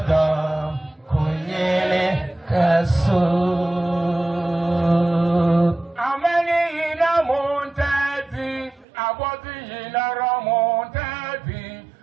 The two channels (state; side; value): drops out; left; at 8.8 s